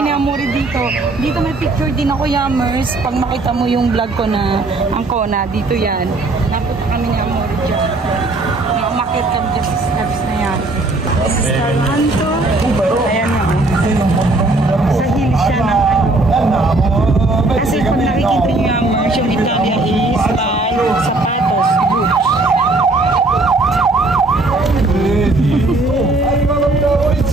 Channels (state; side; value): quieter; left; 3.0 dB